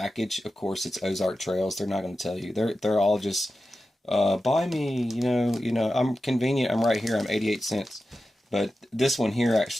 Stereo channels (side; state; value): both; normal; correlation 0.92